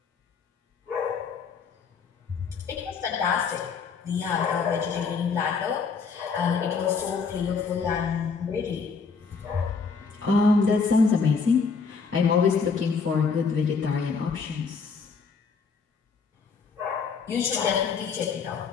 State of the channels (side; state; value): right; quieter; 5.2 dB